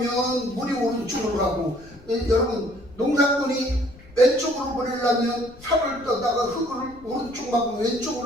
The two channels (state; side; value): noise; left; rumble, 22 dB below the sound